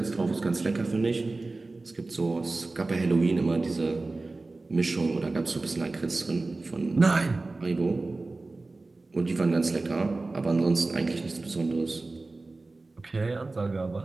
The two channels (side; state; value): left; quieter; 3.3 dB